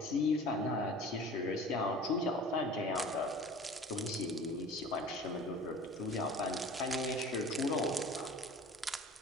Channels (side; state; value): both; normal; correlation 0.42